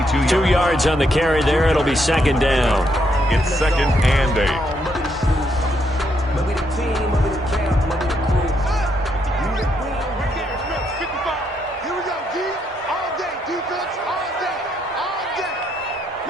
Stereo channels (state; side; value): normal; both; correlation 0.76